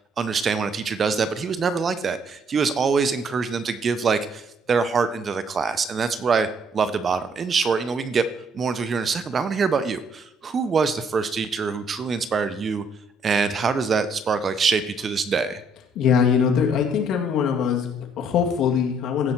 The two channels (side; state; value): both; normal; correlation 0.66